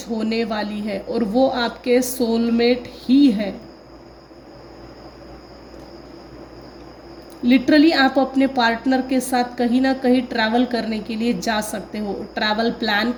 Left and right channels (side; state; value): both; identical; correlation 1.00